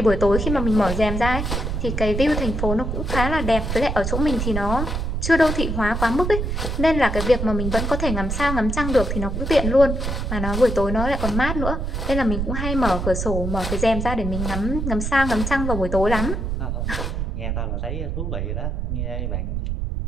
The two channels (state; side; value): noise; right; rumble, 2 dB below the sound